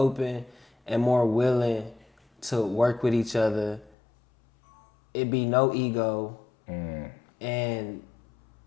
and more willing to work with each other. It be no ego, and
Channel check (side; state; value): right; drops out; at 3.9 s